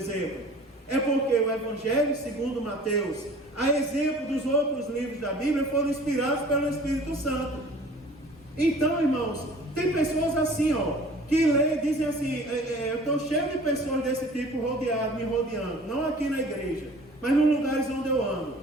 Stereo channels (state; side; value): normal; both; correlation 0.47